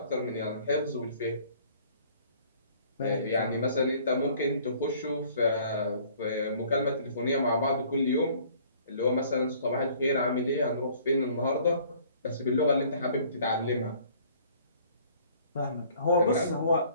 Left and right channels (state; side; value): inverted; both; correlation -0.56